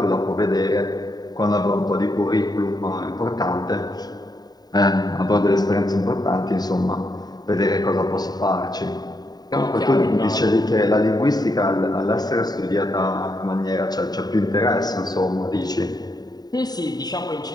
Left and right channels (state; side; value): late; right; 0.19 ms